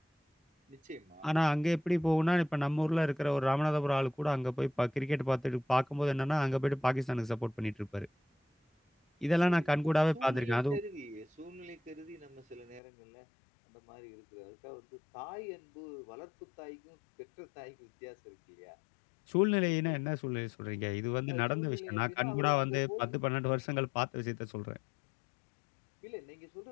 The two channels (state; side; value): drops out; right; at 12.8 s